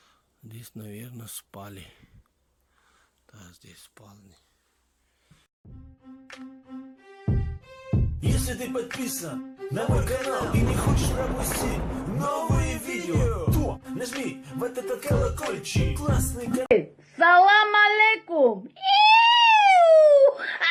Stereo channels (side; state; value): both; identical; correlation 1.00